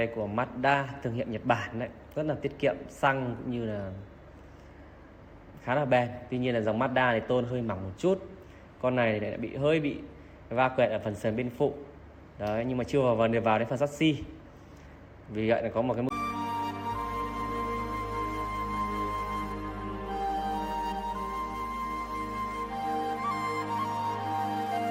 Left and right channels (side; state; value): both; identical; correlation 1.00